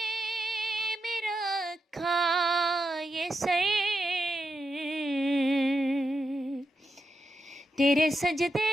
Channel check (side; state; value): both; normal; correlation 0.85